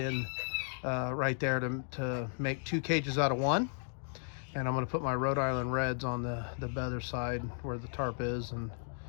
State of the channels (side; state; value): right; silent; digital silence